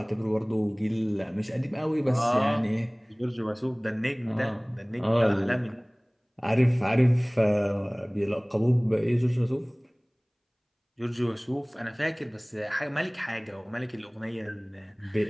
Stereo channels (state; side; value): identical; both; correlation 1.00